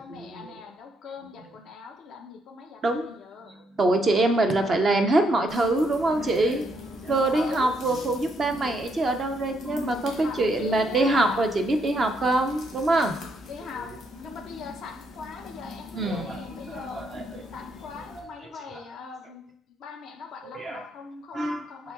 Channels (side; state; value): both; normal; correlation 0.75